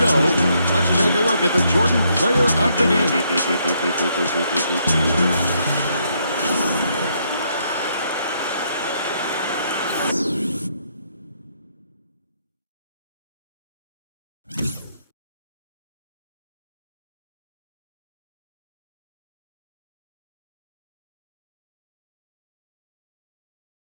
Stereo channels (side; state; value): both; inverted; correlation -0.73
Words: go, let's take a look at the Jordan Player of the Game.